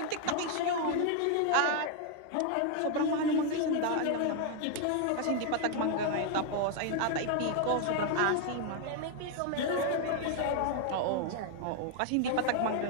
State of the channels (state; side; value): different; both; correlation 0.00